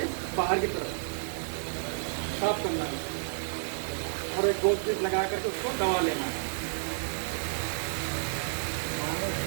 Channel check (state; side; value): silent; left; digital silence